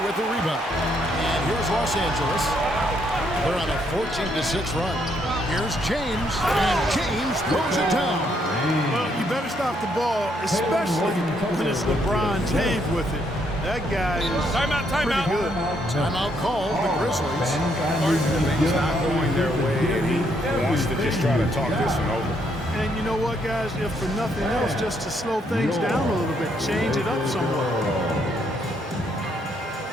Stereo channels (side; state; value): both; normal; correlation 0.73